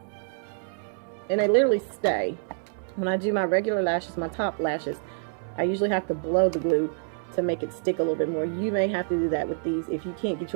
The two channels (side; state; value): left; silent; 58 dB below the other